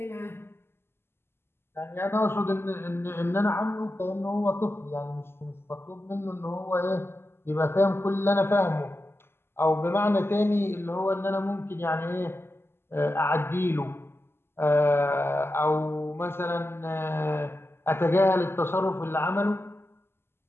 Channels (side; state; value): right; late; 0.12 ms